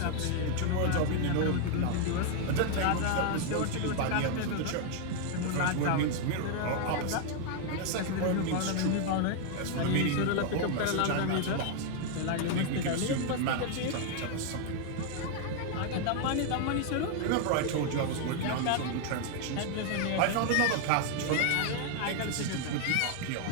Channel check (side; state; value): both; different; correlation 0.00